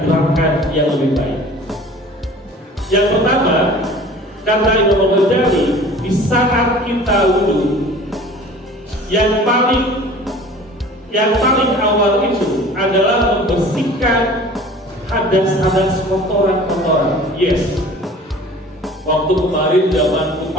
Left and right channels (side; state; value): both; normal; correlation 0.45